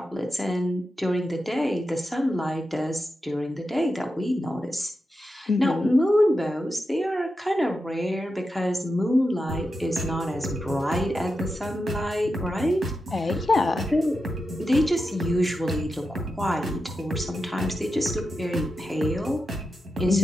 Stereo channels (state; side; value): normal; both; correlation 0.89